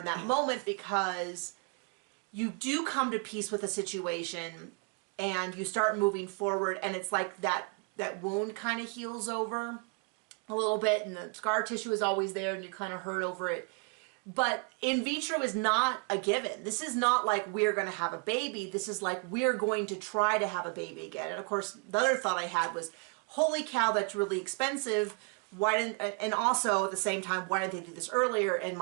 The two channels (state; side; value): quieter; left; 33.4 dB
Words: that moment because you do come to peace with a situation and you start moving forward and it's like that wound kind of heals over a little bit and the scar tissue is always there and you kind of hurt over it. But in vitro is not a given. This is not like we're going to have a baby. This is like we're going to try to have a baby again. And of course, the other thought I had was, holy cow, that's really expensive. And also at the same time, why didn't they do this earlier? And